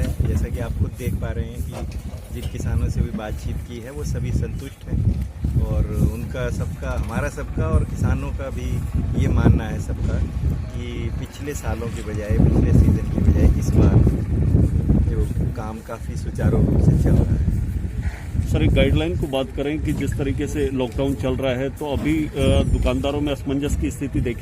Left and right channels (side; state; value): both; identical; correlation 1.00